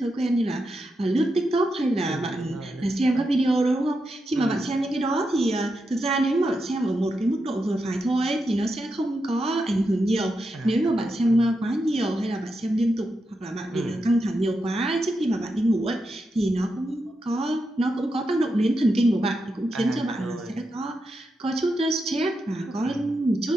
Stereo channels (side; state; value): both; normal; correlation 0.86